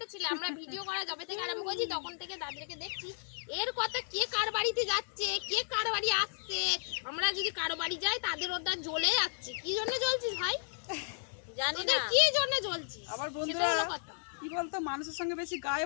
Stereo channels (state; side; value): silent; right; digital silence